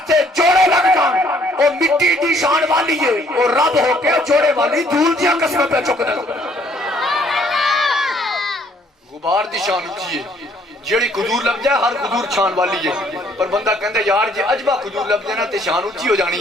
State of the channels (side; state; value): both; normal; correlation 0.63